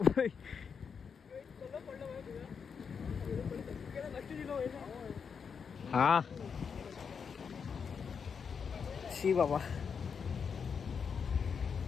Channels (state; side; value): quieter; right; 6.3 dB